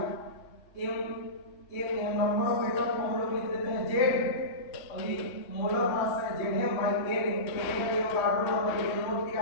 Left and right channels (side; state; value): right; late; 3.1 ms